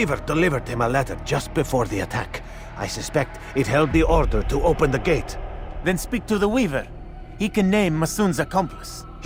delivered him a letter just before the attack. I suspect it held the order to open the gate. Then speak to the weaver. He can name Masoon's accomplice.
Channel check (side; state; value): both; identical; correlation 1.00